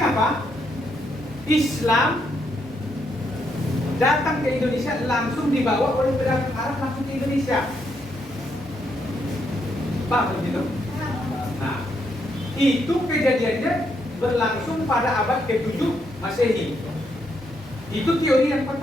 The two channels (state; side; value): normal; both; correlation 0.77